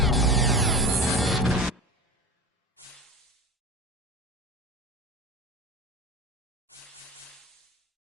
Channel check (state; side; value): normal; both; correlation 0.34